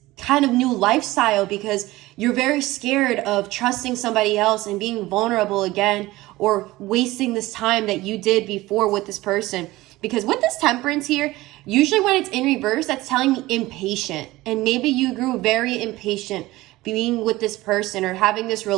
kind of new lifestyle because you're very scared of trusting somebody else and being vulnerable again, or wasting this time that you did before with this person. Because with this Temperance here, usually when it's in reverse, that's telling me impatient. And maybe you grew very impatient being with this person or having this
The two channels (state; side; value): quieter; left; 18.5 dB